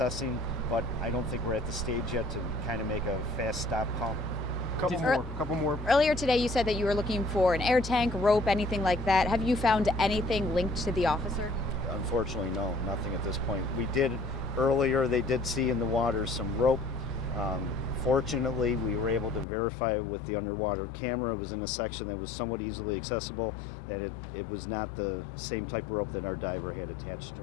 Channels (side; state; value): right; drops out; at 19.5 s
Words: but I don't think we're at the stage yet to kind of make a fast stop call. Couple more. Earlier today, you said that you were looking for an air tank, rope, anything like that. Have you found anything linked to the officer? Unfortunately, no, nothing at this point. We did earlier, they did see in the water some rope. Fortunately, we were able to verify with the underwater camera. It was in a section that was somewhat easily accessible, that it was not the same type of rope that our diver had attached to